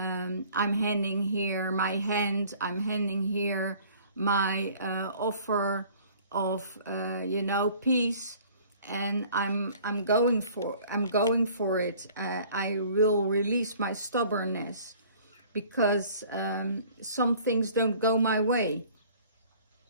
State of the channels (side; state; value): both; inverted; correlation -0.52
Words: handing here my hand, I'm handing here my offer of, you know, peace. And I'm going for it. I will release my stubbornness because some things don't go my way.